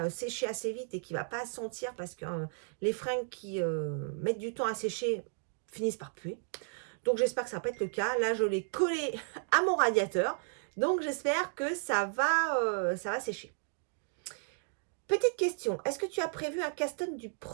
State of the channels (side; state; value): left; silent; digital silence